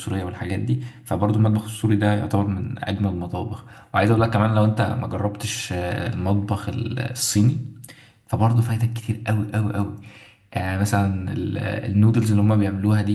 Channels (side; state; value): both; identical; correlation 1.00